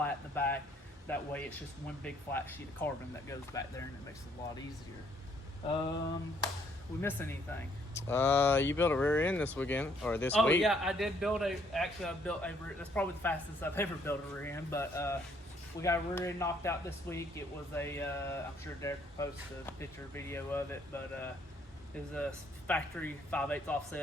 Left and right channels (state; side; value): normal; both; correlation 0.66